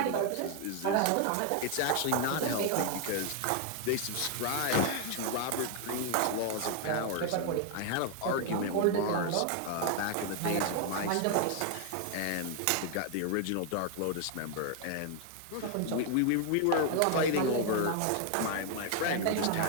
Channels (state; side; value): different; both; correlation 0.00